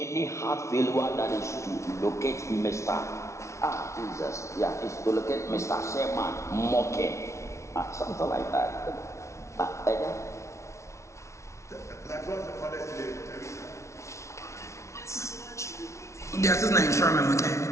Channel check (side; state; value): right; late; 0.14 ms